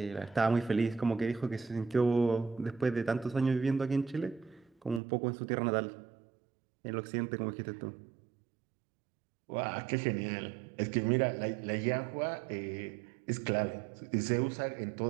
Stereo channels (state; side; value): drops out; left; at 5.0 s